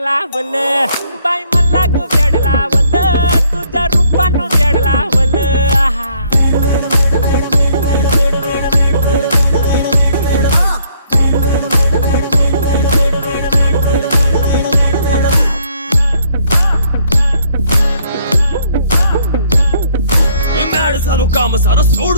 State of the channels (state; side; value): inverted; both; correlation -0.66